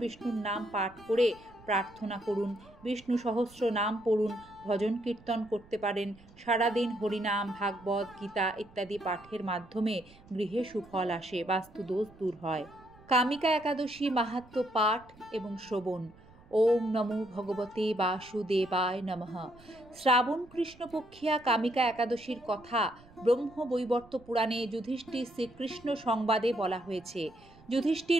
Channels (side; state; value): right; noise; rumble, 24 dB below the sound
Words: নাম পাঠ করে প্রার্থনা করুন। বিষ্ণু সহস্র নাম পড়ুন, ভজন কীর্তন করতে পারেন। সারাদিন হরিনাম, ভাগবত, গীতা ইত্যাদি পাঠের মাধ্যমে গৃহে সুফল আসে, বাস্তুদোষ দূর হয়। কামিকা একাদশী মাহাত্ম্য পাঠ এবং শ্রবণ। ওম নমো ভগবতে বাসুদেবায় নমঃ। শ্রাবণ কৃষ্ণপক্ষিয়া কামিকা একাদশীর কথা ব্রহ্মবৈবর্ত পুরাণে যুধিষ্ঠির শ্রীকৃষ্ণ সংবাদে বলা হয়েছে।